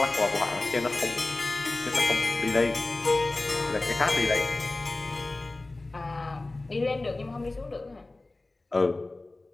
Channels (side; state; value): right; quieter; 3.0 dB